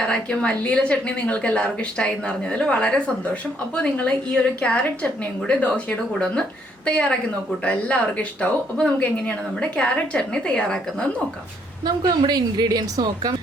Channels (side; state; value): both; normal; correlation 0.69